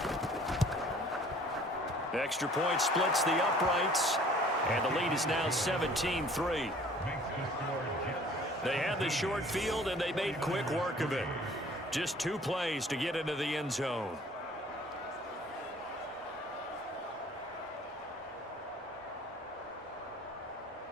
Extra point splits the uprights. And the lead is now 17-3. They had the short field, and they made quick work of it. Just 2 plays to get into the end zone.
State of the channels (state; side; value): normal; both; correlation 0.52